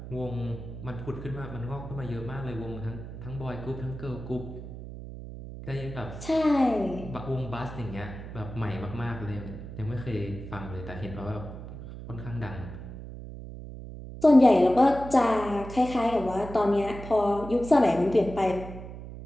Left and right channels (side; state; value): right; noise; hum, 11 dB below the sound